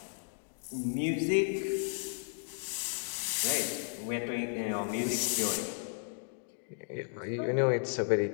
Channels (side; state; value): right; silent; digital silence